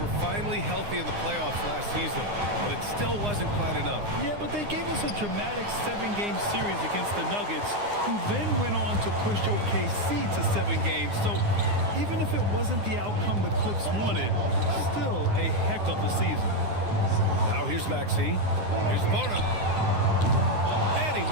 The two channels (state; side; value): late; left; 9.7 ms